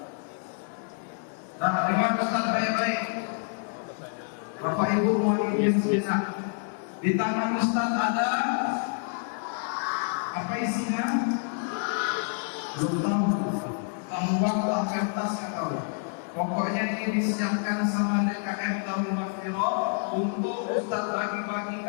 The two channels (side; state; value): right; silent; 59 dB below the other